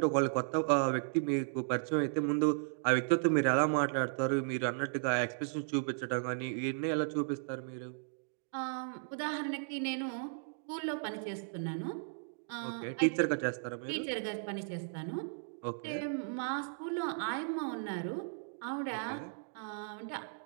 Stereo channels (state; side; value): silent; left; digital silence